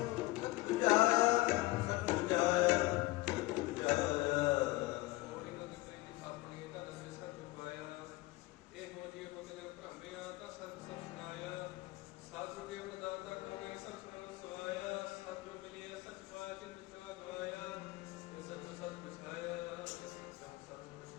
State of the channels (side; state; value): right; quieter; 20.5 dB